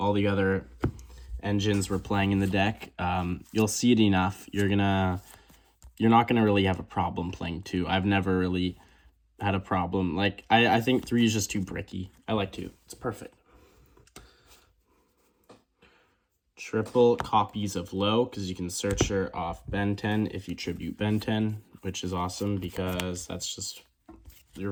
the other engines we're playing in the deck. You'll see it enough. You're not gonna really have a problem playing 2. I've never really had a problem. Like I think 3 is just too bricky. I like 2. It's perfect. Triple copies of Low, because you can search her off Ben 10 if you tribute Ben 10, which is awesome because that's just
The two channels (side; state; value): both; identical; correlation 1.00